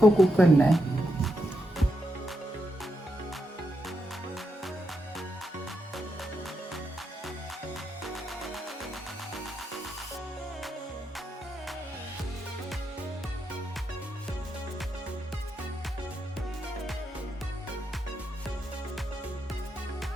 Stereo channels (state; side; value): normal; both; correlation 0.84